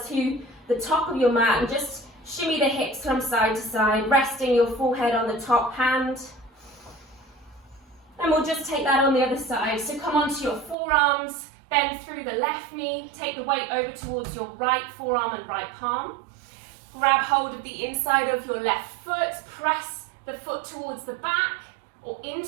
to the top of your mat, and just shimmy the hips from side to side, resting your forehead on the top hand. And we'll just take that on the other side. So come onto your forearms, bend through the left knee, take the weight over towards your right forearm and right palm. Grab hold of the inside of your left foot, press the foot towards the back or in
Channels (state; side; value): drops out; left; at 10.8 s